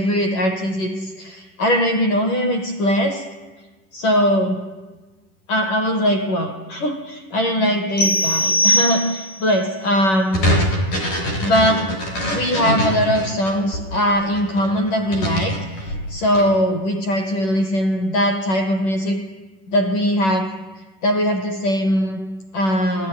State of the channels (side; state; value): right; late; 10 ms